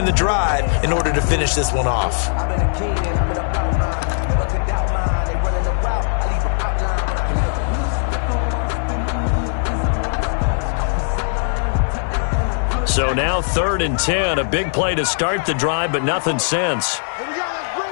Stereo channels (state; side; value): silent; right; digital silence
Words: the drive in order to finish this one off. So now 3rd and 10, a big play to start the drive, but nothing since.